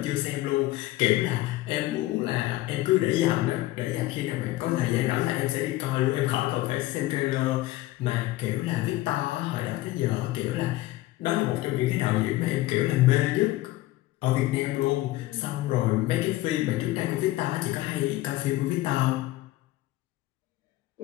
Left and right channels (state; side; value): quieter; right; 17.0 dB